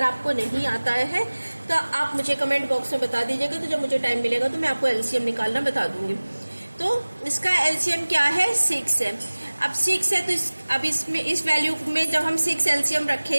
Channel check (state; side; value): inverted; both; correlation -1.00